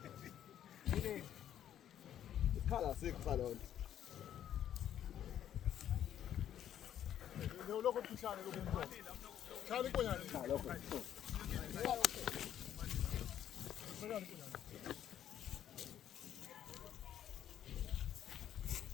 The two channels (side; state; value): right; quieter; 10.6 dB